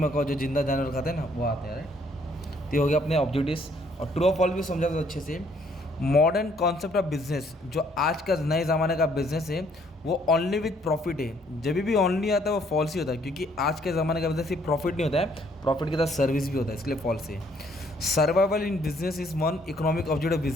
जो जिंदा जानवर खाते हैं ना, वो आते हैं, राइट। तो ये हो गया अपने ऑब्जेक्टिव्स। और ट्रू ऑफ फॉल्स भी समझा था अच्छे से। मॉडर्न कॉन्सेप्ट ऑफ बिजनेस, जो आज का नए ज़माने का बिजनेस है, वो ओनली विथ प्रॉफिट है। जब भी ओनली आता है वो फॉल्स ही होता है, क्योंकि आज के ज़माने का बिजनेस सिर्फ प्रॉफिट नहीं होता है, प्रॉफिट के साथ सर्विस भी होता है, इसलिए फॉल्स है। Survival in business is one economic objective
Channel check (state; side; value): normal; both; correlation 0.65